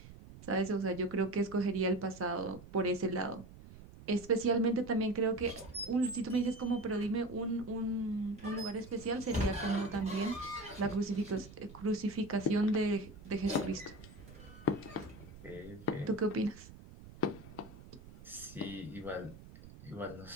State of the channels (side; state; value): right; noise; rumble, 17 dB below the sound